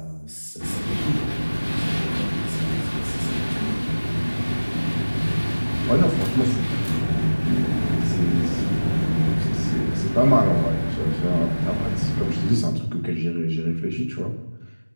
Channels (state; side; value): inverted; both; correlation -1.00